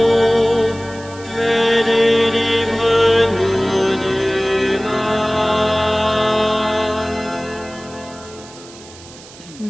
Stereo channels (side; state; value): right; noise; hiss, 20 dB below the sound